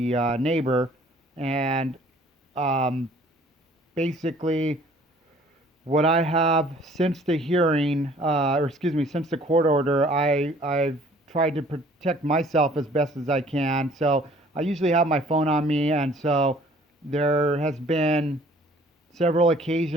neighbor. And um, basically, what I have since the hearing, or excuse me, since the court order, I've tried to protect myself as best as I can. So I usually have my phone on me, and so there has been several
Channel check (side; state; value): both; normal; correlation 0.55